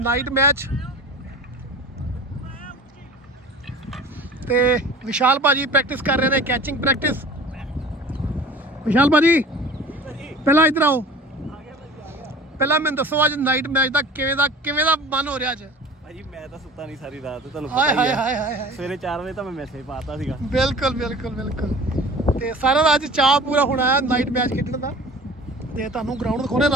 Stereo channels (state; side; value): normal; both; correlation 0.41